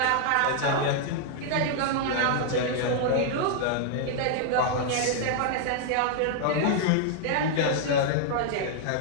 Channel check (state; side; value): different; both; correlation 0.00